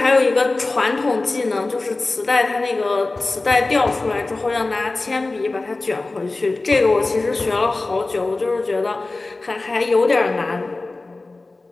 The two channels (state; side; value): quieter; right; 3.3 dB